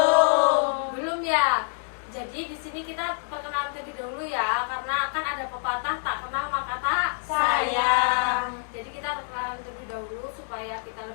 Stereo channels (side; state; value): right; silent; digital silence